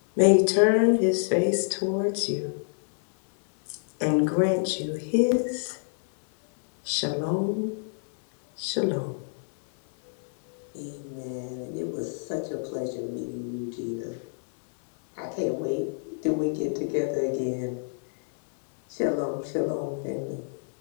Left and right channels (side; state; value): right; silent; digital silence